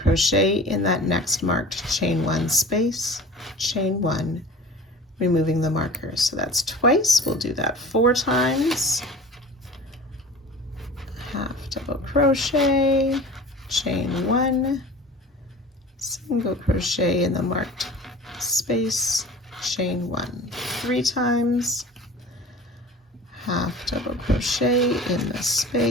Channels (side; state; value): both; normal; correlation 0.40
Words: in that next marked chain 1 space, chain 1, removing the marker. So that's twice. We'll do that 4 times. Half double crochet, chain 1, single crochet in the marked space, chain 1, 3 times, half double crochet in the